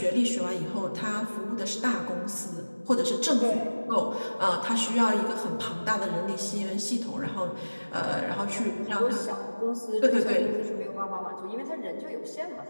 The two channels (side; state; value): both; inverted; correlation -1.00